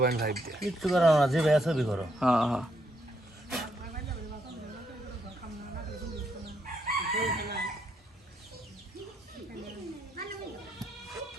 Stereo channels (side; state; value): both; normal; correlation 0.76